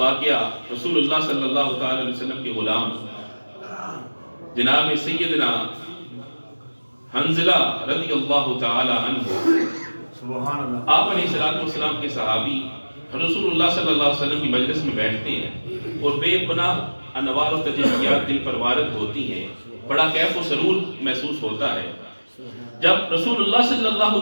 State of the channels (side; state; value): both; inverted; correlation -1.00